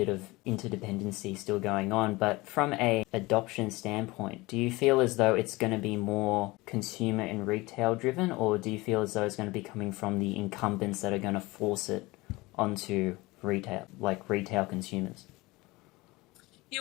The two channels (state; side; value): quieter; right; 21.8 dB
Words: of interdependency still going on, but from a adoption standpoint, do you feel as though it's going to be more consumer and retail driven, or do you feel as though it's going to be coming from the incumbents that are going to force it onto retail, like retail consumers?